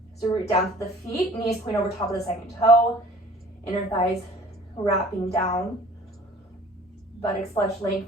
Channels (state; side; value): normal; both; correlation 0.49